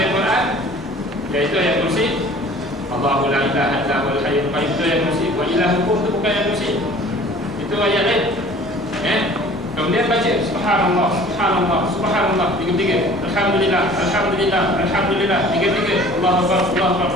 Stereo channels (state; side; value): normal; both; correlation 0.48